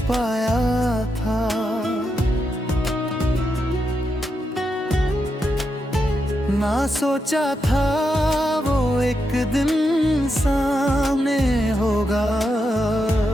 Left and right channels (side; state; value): both; normal; correlation 0.84